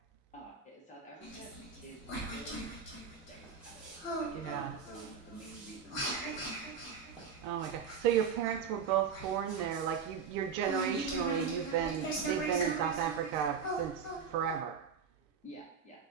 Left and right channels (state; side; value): quieter; left; 6.5 dB